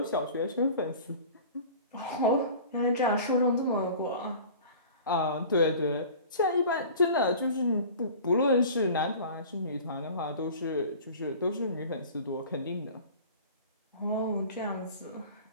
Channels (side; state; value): both; inverted; correlation -0.42